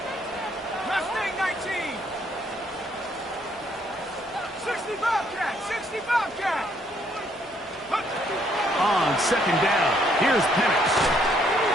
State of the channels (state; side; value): normal; both; correlation 0.68